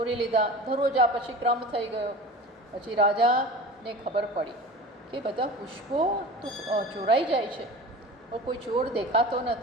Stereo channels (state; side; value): normal; both; correlation 0.35